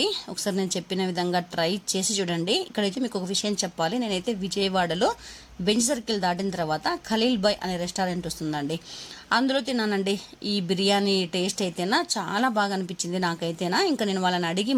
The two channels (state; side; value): identical; both; correlation 1.00